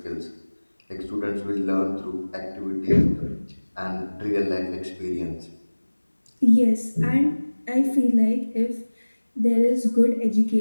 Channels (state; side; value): inverted; both; correlation -1.00